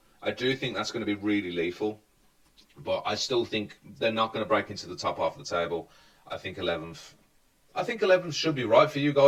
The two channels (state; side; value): identical; both; correlation 1.00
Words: I do think that's going to be really lethal. But I still think they're not going to break into the top half of the table. I think 11th. I think 11th should be right for you